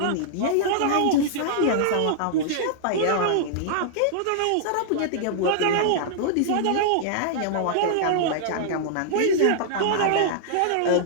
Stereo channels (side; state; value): both; different; correlation -0.01